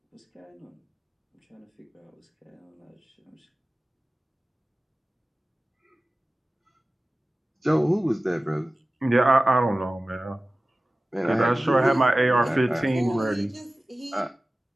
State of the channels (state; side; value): normal; both; correlation 0.97